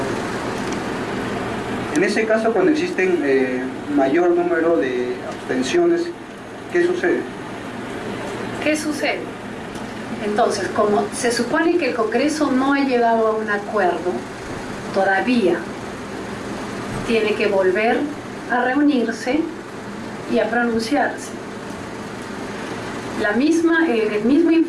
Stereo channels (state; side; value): identical; both; correlation 1.00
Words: En ese caso, cuando existen mayor número de abstenciones, ¿qué sucede? ¿Qué sucede? Entonces, como se supone que el Congreso no ha llegado a un acuerdo todavía, tiene que volver a reunirse y a pronunciarse. El mismo